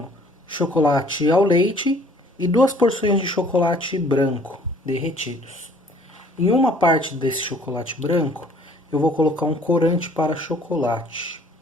chocolate ao leite e 2 porções de chocolate branco derretidos. Em uma parte desse chocolate branco, eu vou colocar um corante para chocolate.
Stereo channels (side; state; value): both; normal; correlation 0.56